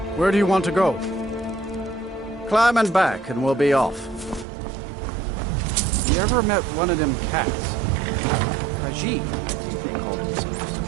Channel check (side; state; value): left; drops out; at 4.5 s